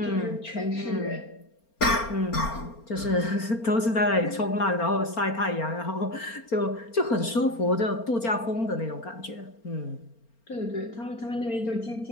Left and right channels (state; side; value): late; right; 4.3 ms